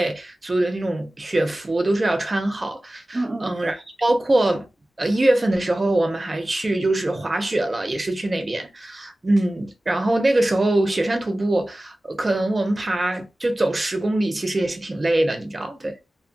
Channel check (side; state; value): both; normal; correlation 0.97